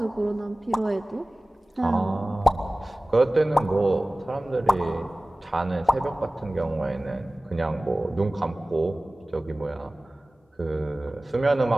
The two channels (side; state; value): both; normal; correlation 0.98